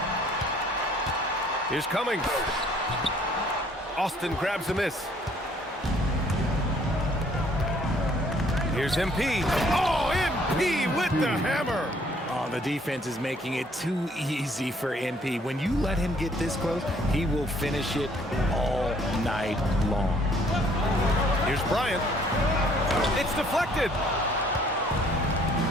Here's Cummings. Austin grabs the miss. Here's MP. Oh, MP with the hammer. Oh, the defense is making it too easy for MP. When you let him get this close, he will finish it all night long. Here's Bryant. It's deflected.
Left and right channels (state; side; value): normal; both; correlation 0.61